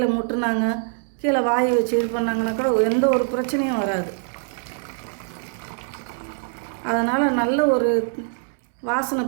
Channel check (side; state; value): left; silent; 58 dB below the other